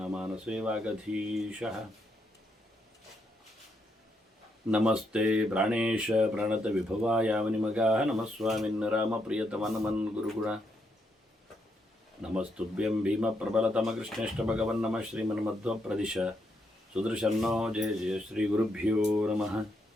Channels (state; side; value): normal; both; correlation 0.78